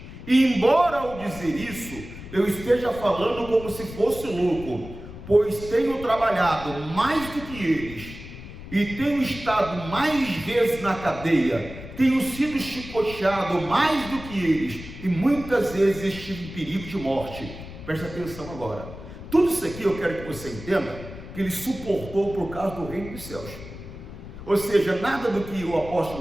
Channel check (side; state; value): left; noise; rumble, 13 dB below the sound